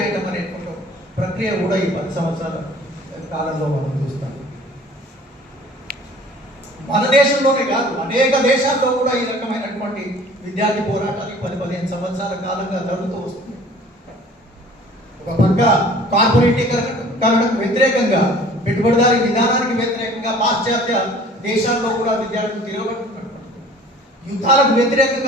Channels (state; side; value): normal; both; correlation 0.49